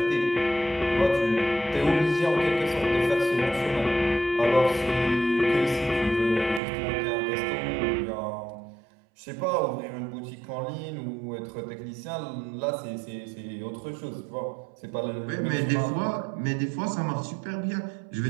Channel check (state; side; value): drops out; left; at 6.6 s